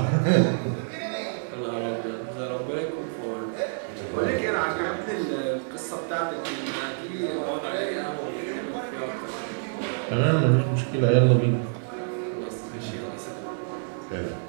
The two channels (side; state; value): left; silent; digital silence